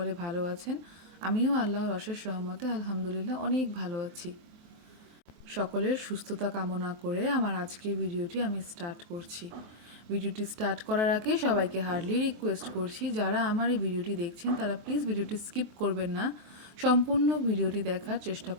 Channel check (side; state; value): left; late; 23 ms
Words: ভালো আছেন। আমিও আল্লাহর অশেষ রহমতে আলহামদুলিল্লাহ অনেক ভালো আছি। সকলের সুস্থতা কামনা করে আমার আজকের ভিডিওটি আমি স্টার্ট করছি। ভিডিওটি স্টার্ট করার আগে সবাইকে হার্ডলি রিকোয়েস্ট করছি, যারা আমার এই ভিডিওটি দেখছেন তারা প্লিজ ভিডিওটি স্কিপ করবেন না, সম্পূর্ণ ভিডিওটি দেখার চেষ্টা